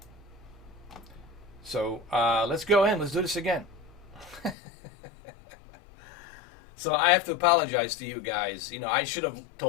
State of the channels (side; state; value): right; drops out; at 4.5 s